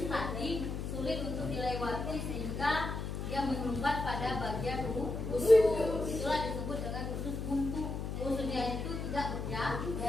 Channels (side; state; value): left; noise; hum, 4 dB below the sound